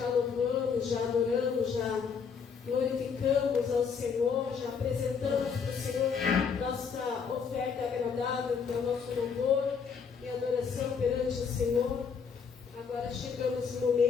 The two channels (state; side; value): quieter; right; 6.1 dB